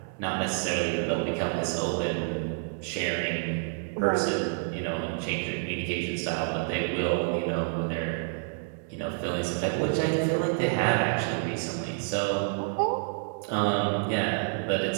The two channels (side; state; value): left; silent; 59 dB below the other